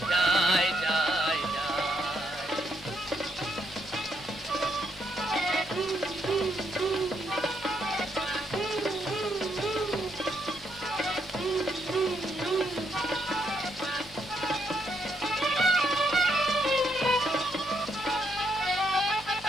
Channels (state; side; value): normal; both; correlation 0.76